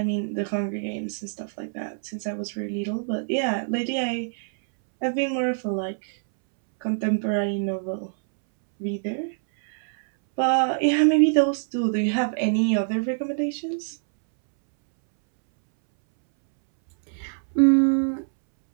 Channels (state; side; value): silent; left; 62 dB below the other